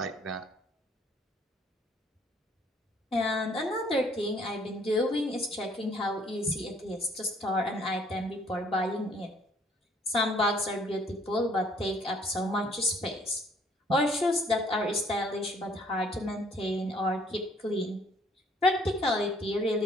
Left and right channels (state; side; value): normal; both; correlation 0.61